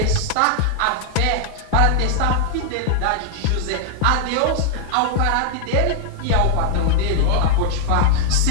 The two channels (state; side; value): different; both; correlation 0.00